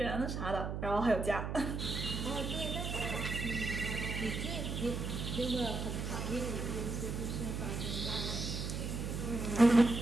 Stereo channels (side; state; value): right; noise; hum, 3 dB below the sound